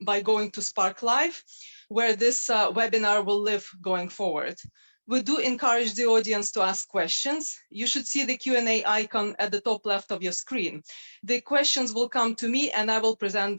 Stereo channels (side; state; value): both; inverted; correlation -1.00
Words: by going to Spark Live, where this webinar will live going forward. We do encourage the audience to ask questions. You should see the Q&A icon at the top left of your screen. The questions will come to me and I will present